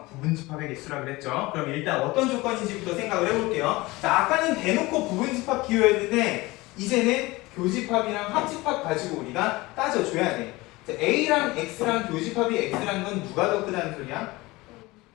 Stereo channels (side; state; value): right; quieter; 21.3 dB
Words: 부분집합의 개수라 그랬죠. 그럼 일단 어떤 조건인지부터 생각을 해볼게요. 자, 아까는 대놓고 부분집합 기호였는데 이제는 교집합이랑 합집합 가지고 우리가 따져줘야 돼. 자, A랑 X랑 교집합이 X라는 건 누가 더 크다는 소리야?